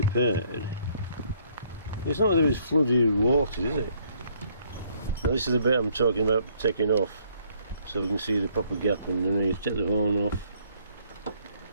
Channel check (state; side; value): inverted; both; correlation -0.65